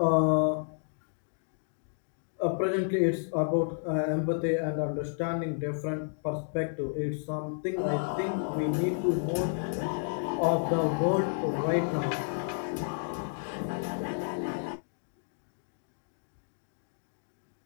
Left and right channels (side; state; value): right; silent; digital silence